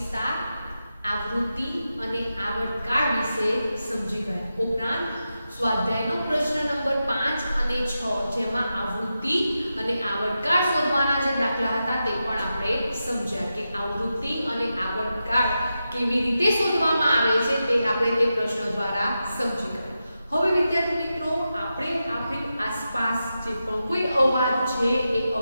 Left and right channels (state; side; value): inverted; both; correlation -0.90